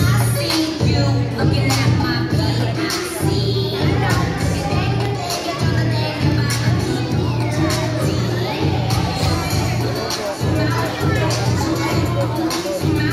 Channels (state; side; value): identical; both; correlation 1.00